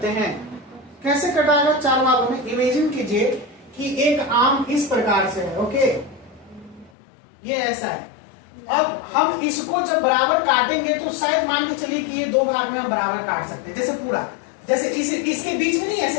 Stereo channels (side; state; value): right; drops out; at 6.9 s